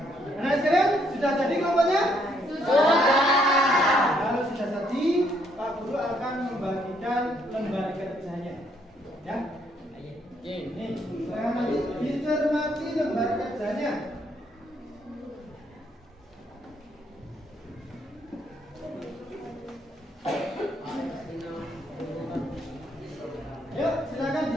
Anak sekalian, sudah jadi kelompoknya? Sudah. Kalau sudah jadi, Pak Guru akan membagikan lembar kerjanya. Ya. Ini, silakan nanti dicermati lembar kerjanya. Yuk, silakan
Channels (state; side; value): normal; both; correlation 0.70